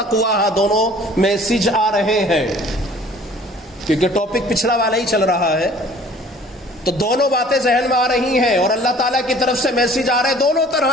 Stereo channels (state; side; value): normal; both; correlation 0.51